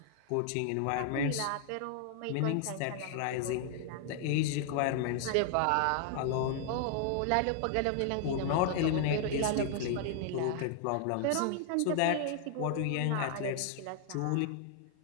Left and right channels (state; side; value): different; both; correlation 0.00